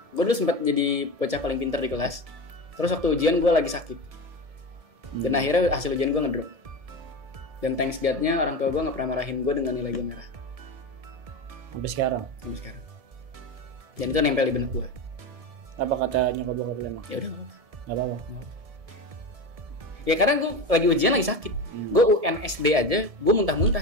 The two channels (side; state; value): left; late; 1.7 ms